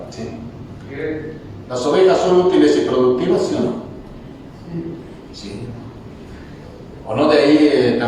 ¿Sí? ¿Las ovejas son útiles y productivas, sí o no? Sí. ¿O no de ahí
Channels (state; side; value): identical; both; correlation 1.00